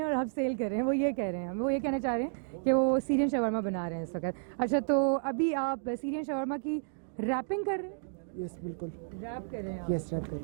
और आप सेल कर रहे हैं, वो ये कह रहे हैं, वो ये कहना चाह रहे हैं कि वो सीरियन शवारमा बना रहे हैं इस वक्त। अच्छा, तो अभी आप सीरियन शवारमा की रैपिंग कर रहे हैं? यस बिल्कुल। रैप कर रहे हैं आप? यस रैप कर रहे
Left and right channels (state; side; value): silent; left; digital silence